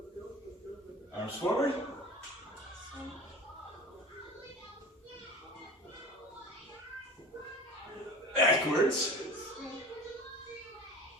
Arms forward. Backwards.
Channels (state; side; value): normal; both; correlation 0.37